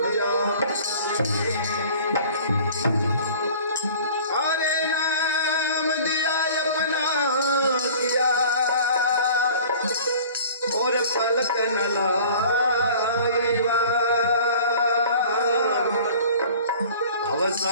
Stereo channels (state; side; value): inverted; both; correlation -0.46